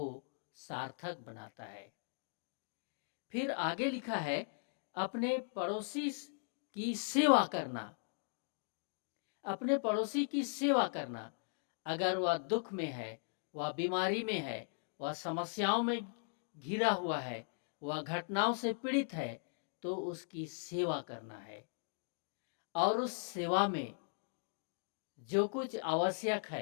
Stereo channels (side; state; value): right; silent; digital silence